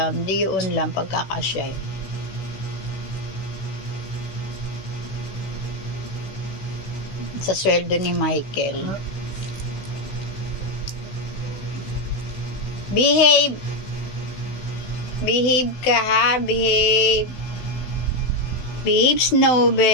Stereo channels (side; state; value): right; late; 16 ms